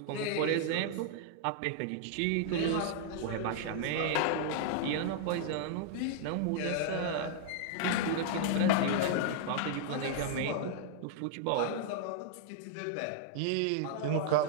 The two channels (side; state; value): both; different; correlation -0.01